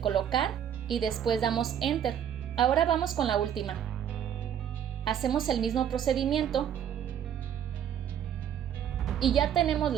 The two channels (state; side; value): quieter; left; 9.4 dB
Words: y después damos Enter. Ahora vamos con la última. Hacemos el mismo procedimiento y ya tenemos